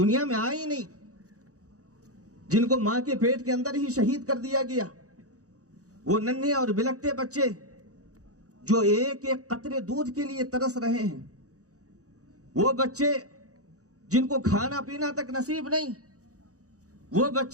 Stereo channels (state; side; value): late; left; 0.66 ms